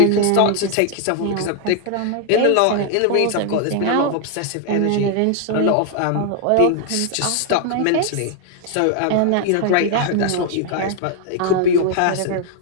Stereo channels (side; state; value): both; different; correlation 0.00